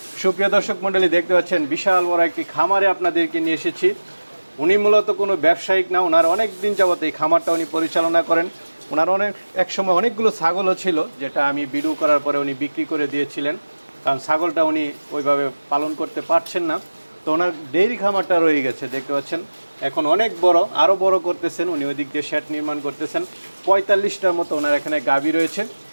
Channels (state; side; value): inverted; both; correlation -1.00